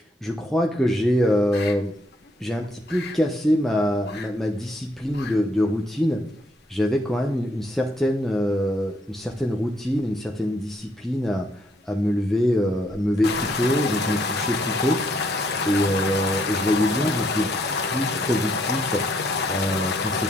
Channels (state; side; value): normal; both; correlation 0.71